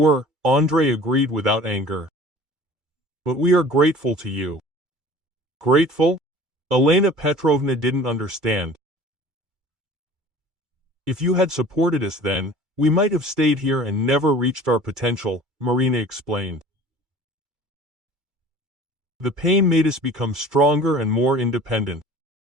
Andrei agreed without anger. "But we are grateful to you." "Grateful?" Elena Petrovna didn't understand. "If you had supported us then, we might have stayed here and never reached our potential," Marina explained. "The pain made us become stronger and more independent.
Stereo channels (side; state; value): left; late; 2.3 ms